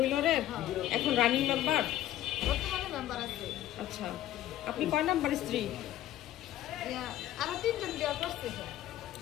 এখন রানিং মেম্বার। আচ্ছা, আপনি কয় নাম্বার স্ত্রী?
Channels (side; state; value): right; quieter; 13.4 dB